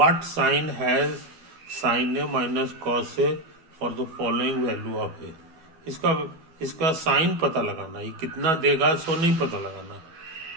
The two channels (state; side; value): late; left; 12 ms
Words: sign has sine A minus cos A for the following value of A. इसका इसका साइन पता लगाना, ये कितना देगा सो नहीं पता लगाना,